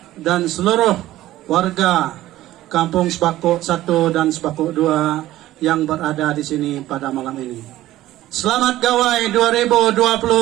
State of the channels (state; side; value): quieter; left; 15.1 dB